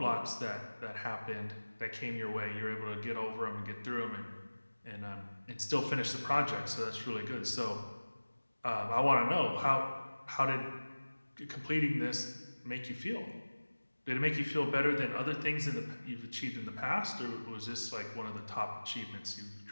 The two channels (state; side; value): inverted; both; correlation -1.00